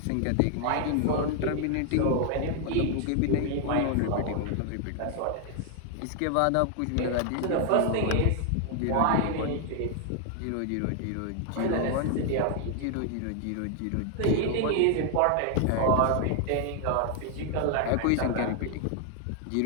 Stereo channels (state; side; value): different; both; correlation 0.00